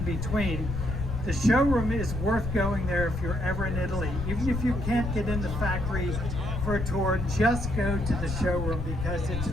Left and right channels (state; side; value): noise; left; rumble, 4 dB below the sound